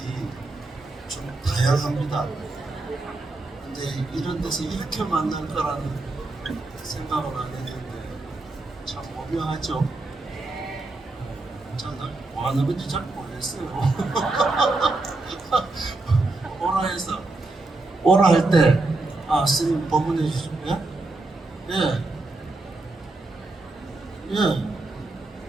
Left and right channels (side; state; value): left; quieter; 3.1 dB